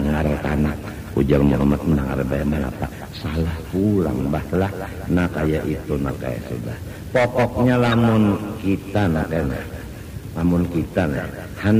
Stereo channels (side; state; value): both; identical; correlation 1.00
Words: tanah ujar Muhammad mendengar bayar apa salah pulang bahlah. Nah kayak itu nah kayak sudah pokoknya lamun kita